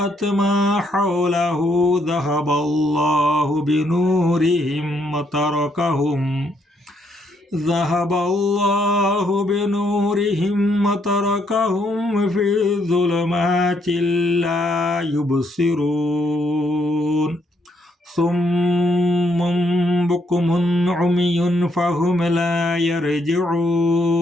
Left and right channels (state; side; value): normal; both; correlation 0.73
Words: ما حوله ذهب الله بنورهم وتركهم في ظلمات لا يبصرون صم بكم عمي فهم لا